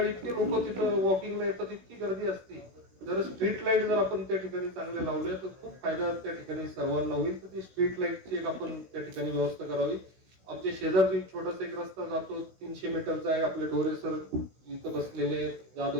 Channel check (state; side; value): late; left; 16 ms